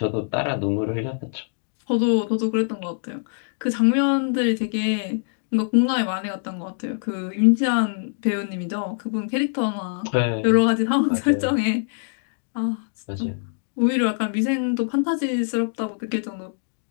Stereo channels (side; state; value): right; silent; digital silence